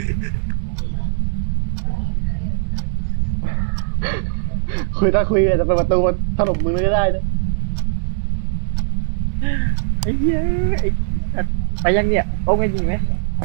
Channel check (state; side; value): silent; left; 66 dB below the other